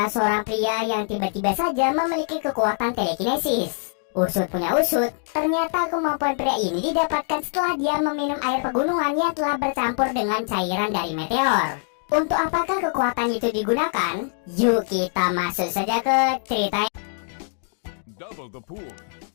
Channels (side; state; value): right; silent; 57 dB below the other